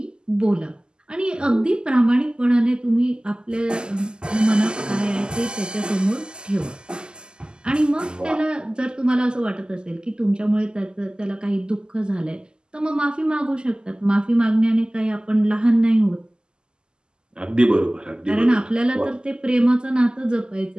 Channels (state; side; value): late; left; 0.047 ms